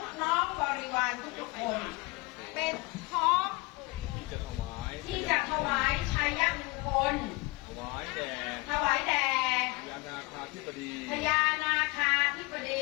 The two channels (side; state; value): right; quieter; 25.1 dB